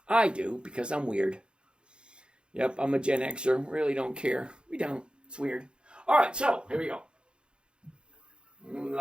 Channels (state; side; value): late; left; 0.053 ms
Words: I do, because I'm weird. Yep, I'm a Gen Xer. Really don't care. We don't. It's weird. All right, so here we go.